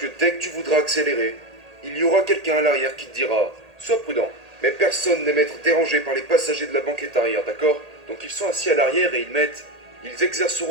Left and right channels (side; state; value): left; late; 1.8 ms